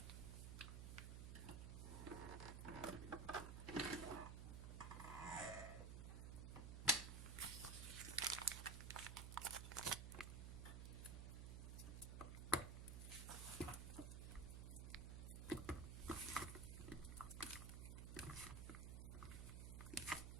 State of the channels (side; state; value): right; noise; hum, 5 dB below the sound